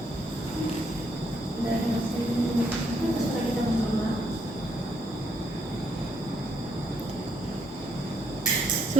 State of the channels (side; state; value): both; normal; correlation 0.73